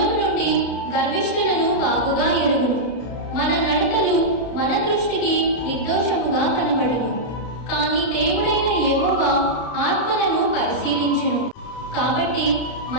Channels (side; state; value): right; late; 32 ms